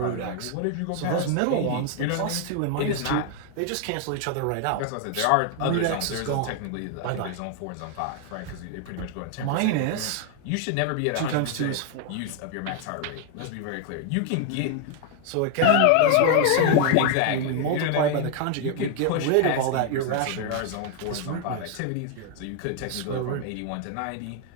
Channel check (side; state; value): both; different; correlation 0.00